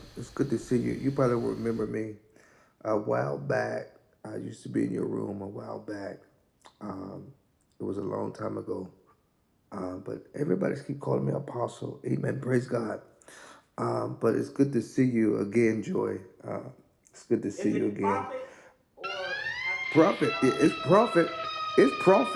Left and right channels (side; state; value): both; identical; correlation 1.00